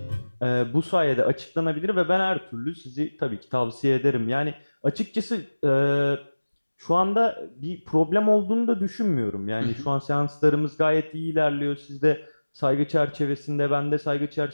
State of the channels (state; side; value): inverted; both; correlation -1.00